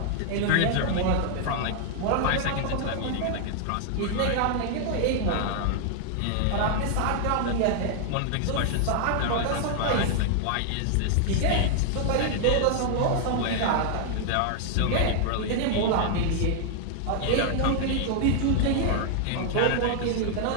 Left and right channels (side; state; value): both; different; correlation 0.00